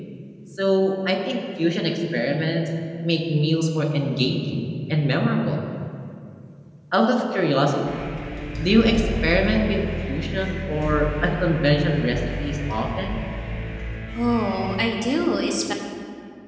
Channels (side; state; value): both; identical; correlation 1.00